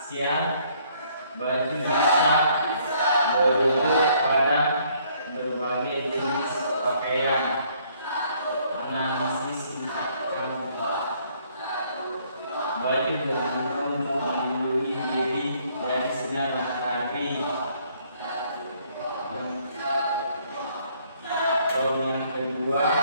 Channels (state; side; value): inverted; both; correlation -0.64